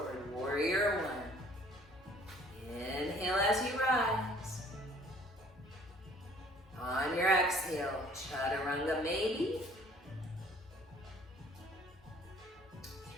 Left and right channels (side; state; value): both; normal; correlation 0.55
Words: warrior 1. Inhale as you rise. On your exhale, chaturanga maybe.